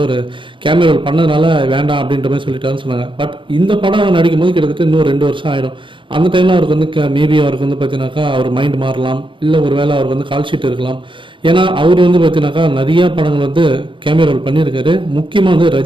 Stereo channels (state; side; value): late; left; 0.24 ms